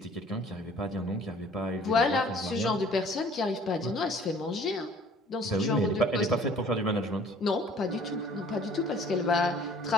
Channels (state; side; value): normal; both; correlation 0.53